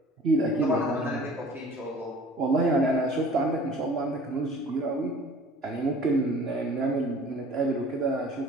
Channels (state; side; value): normal; both; correlation 0.48